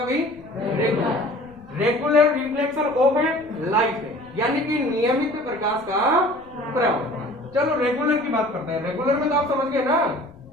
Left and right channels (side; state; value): left; noise; rumble, 26 dB below the sound